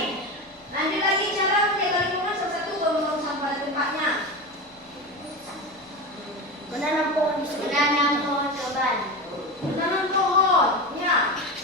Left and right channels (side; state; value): both; normal; correlation 0.22